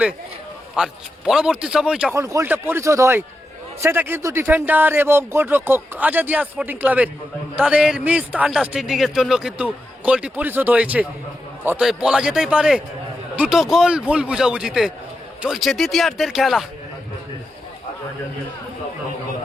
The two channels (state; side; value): normal; both; correlation 0.88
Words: আর পরবর্তী সময় যখন গোলটা পরিশোধ হয় সেটা কিন্তু ডিফেন্ডার এবং গোলরক্ষক আজাদিয়া স্পোর্টিং ক্লাবের তাদের মিস আন্ডারস্ট্যান্ডিং এর জন্য কিন্তু গোলটি পরিশোধ হয়েছে। অতএব বলা যেতেই পারে দুটো গোল ভুল বুঝাবুঝিতে। চলছে দ্বিতীয়ার্ধের খেলা।